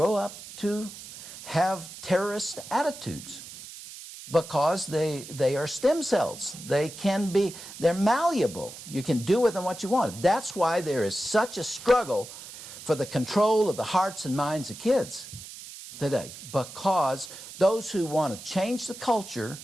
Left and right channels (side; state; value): right; noise; hiss, 14 dB below the sound